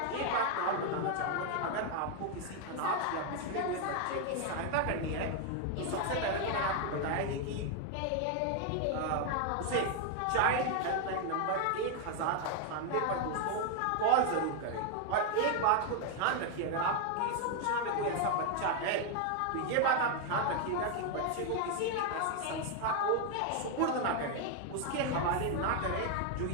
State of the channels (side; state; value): both; different; correlation 0.01